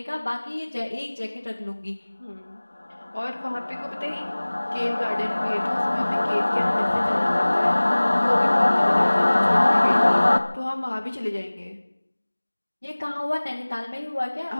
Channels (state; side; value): inverted; both; correlation -1.00